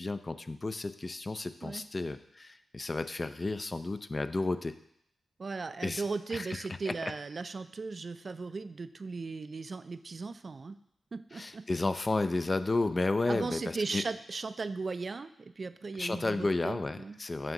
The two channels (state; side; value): normal; both; correlation 0.94